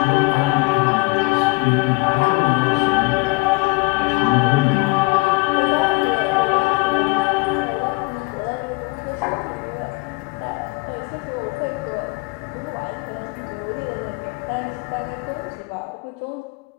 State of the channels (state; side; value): quieter; right; 25.6 dB